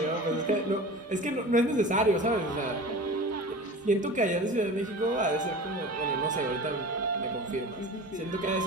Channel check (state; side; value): normal; both; correlation 0.36